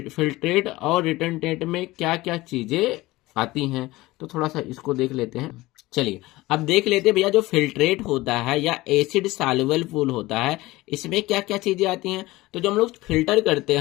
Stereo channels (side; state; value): right; quieter; 19.2 dB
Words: फिल्ट्रेट और रिटेंटेट में क्या क्या चीजें आती हैं, तो थोड़ा सा इसको देख लेते हैं। चलिए अब देख लेते हैं भैया जो फिल्ट्रेट होता है या एसिड सॉल्युबल पूल होता है इसमें क्या क्या चीजें आती हैं। तो जब हम लोग फिल्टर करते